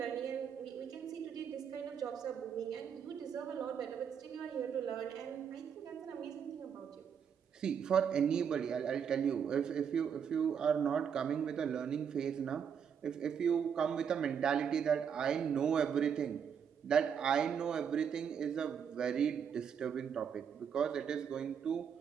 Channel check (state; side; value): quieter; left; 7.5 dB